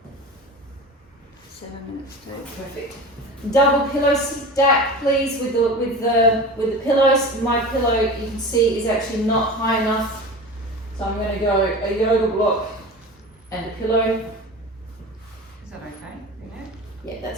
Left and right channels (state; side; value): normal; both; correlation 0.33